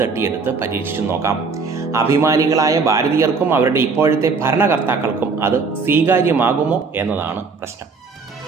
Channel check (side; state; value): left; quieter; 4.7 dB